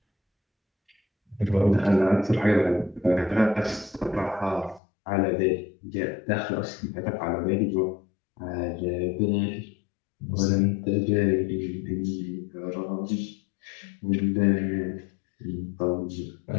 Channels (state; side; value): drops out; right; at 4.8 s